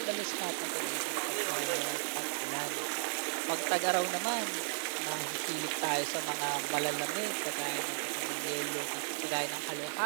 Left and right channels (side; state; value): left; silent; 55 dB below the other